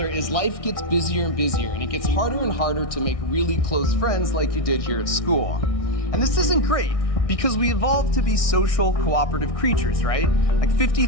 is life gets busier and busier, and it gets harder and harder to make really close friends like you did here at school. And this isn't great, because we evolved to be social, cooperative creatures, right? Like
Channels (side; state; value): right; late; 1.6 ms